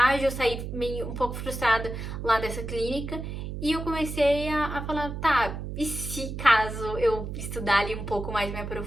eu saí meio um pouco frustrada lá dessa clínica, e eu comecei a falar, tá, e se caso eu estudar ali um pouco mais, me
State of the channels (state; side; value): noise; right; hum, 6 dB below the sound